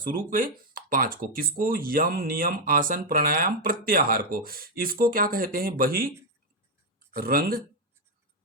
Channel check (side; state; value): both; normal; correlation 0.02